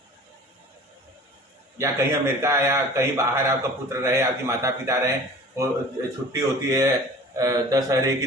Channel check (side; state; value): both; normal; correlation 0.43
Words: या कहीं अमेरिका या कहीं बाहर आपका पुत्र रहे, आपकी माता पिता रहे, वो छुट्टी होती है दशहरे की,